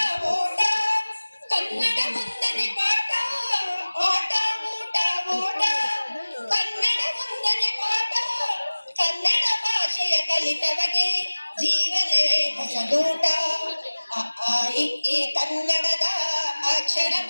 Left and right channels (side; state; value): both; inverted; correlation -1.00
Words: ಓಟ ಕನ್ನಡ ಮುಂದನೆ ಪಾಠ ಆಟ ಊಟ ಓಟ ಕನ್ನಡ ಮುಂದನೆ ಪಾಠ ಕನ್ನಡ ಭಾಷೆಯ ಕಲಿತವಗೆ ಜೀವನವೇ ಹೊಸದೂಟ ಈ ಕನ್ನಡದ